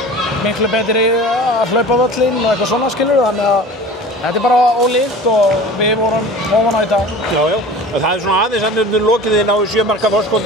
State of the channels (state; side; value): normal; both; correlation 0.39